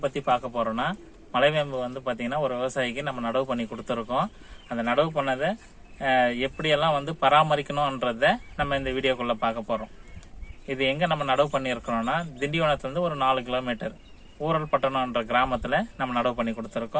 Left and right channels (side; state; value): both; identical; correlation 1.00